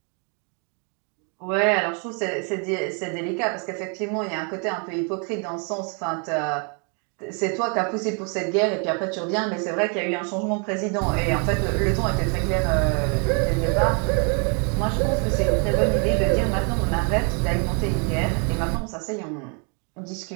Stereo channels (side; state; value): left; quieter; 36.8 dB